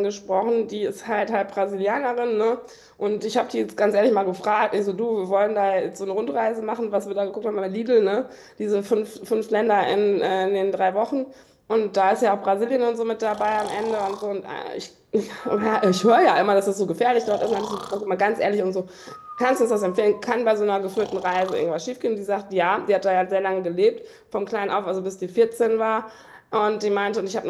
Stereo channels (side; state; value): both; identical; correlation 1.00